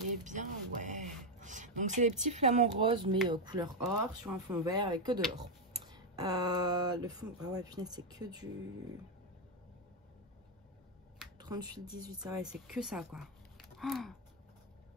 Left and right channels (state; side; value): normal; both; correlation 0.04